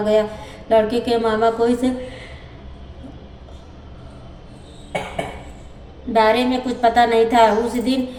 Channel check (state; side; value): identical; both; correlation 1.00